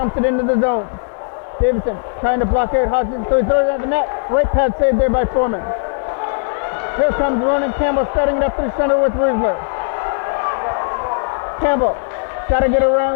it into the zone. Davidson trying to block out Hodgson, so he throws it at the net. Right pad saved there by Foreman. Here comes Ronan Campbell starting it up through center with Riesler. Campbell got to get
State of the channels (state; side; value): silent; right; digital silence